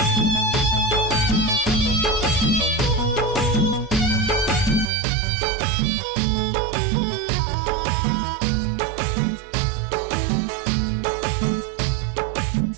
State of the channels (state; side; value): drops out; left; at 4.9 s